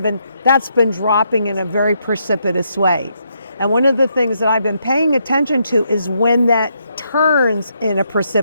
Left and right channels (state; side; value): inverted; both; correlation -0.77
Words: that's been dropping in a very precipitous way. And one of the things that I've been paying attention to is when that turns in a